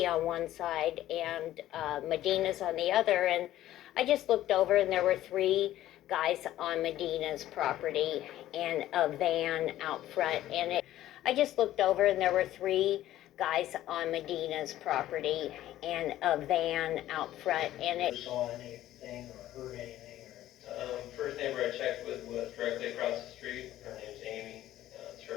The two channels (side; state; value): right; quieter; 13.8 dB